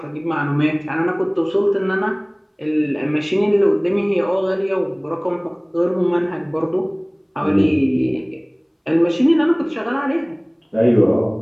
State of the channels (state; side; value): identical; both; correlation 1.00